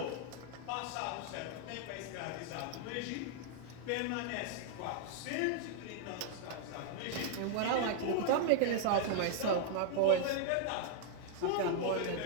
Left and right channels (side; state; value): both; different; correlation 0.00